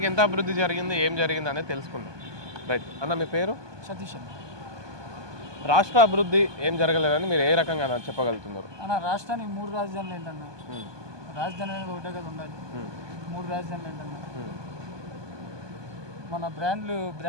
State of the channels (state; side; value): late; left; 1.2 ms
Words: ఎంత అభివృద్ధి జరిగింది, ఏం జరిగింది అనేది తెలుసుకుందాం. రైట్ అన్న, మీ పేరు? సతీష్. రాష్ట్ర అభివృద్ధి ఏం జరగలేదని మీరు ఏ రకంగా చెప్పగలుగుతున్నారు? అన్న, రాష్ట్రానికి 3 రాజధానులు ఏంటన్నా? రాజధాని అనేది ఒకటే కదా ఉండాలి. 3 రాజధానులు ఏంటన్నా? మన